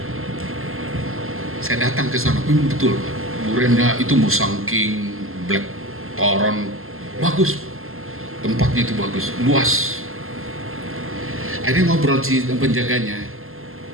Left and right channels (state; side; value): late; left; 0.62 ms